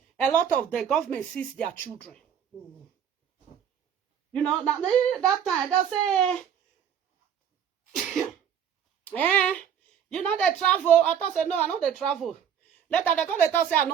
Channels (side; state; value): left; quieter; 8.6 dB